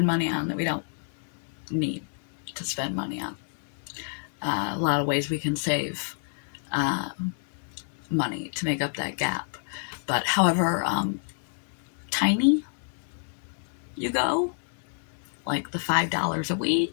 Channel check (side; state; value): right; silent; digital silence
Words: money on that we don't need to spend money on. A lot of ways we can save money to make up that gap. But however tiny you go, like the $5 a